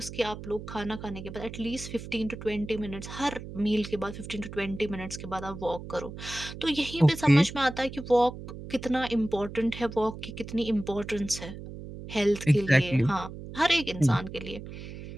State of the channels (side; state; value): right; noise; hum, 11 dB below the sound